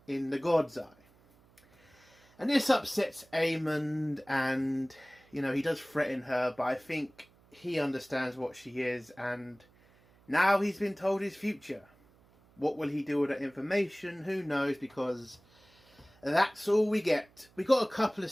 in the God's Eye. And this upsets Aemond, and, he does threaten her, but I think he understands what she is, and now he's been told his future. What will he do with that information? Who knows, because That's all we get. We got a couple of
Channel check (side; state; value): right; noise; hum, 30 dB below the sound